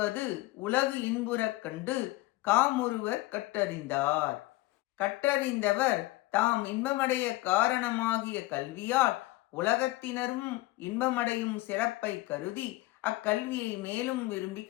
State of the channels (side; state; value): right; quieter; 19.0 dB